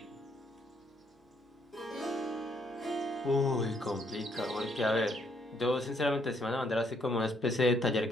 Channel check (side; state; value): both; normal; correlation 0.71